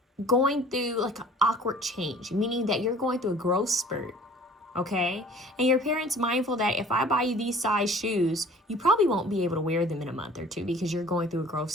going through like an awkward change, meaning that you're going through a growth spurt. Okay, and your parents mindful that if I buy you these size shoes, you probably won't be able to wear them in a month or two because you're going through a growth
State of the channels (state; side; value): normal; both; correlation 0.49